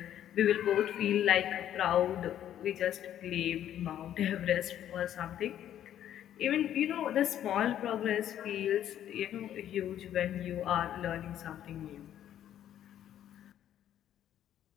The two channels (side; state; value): right; quieter; 11.0 dB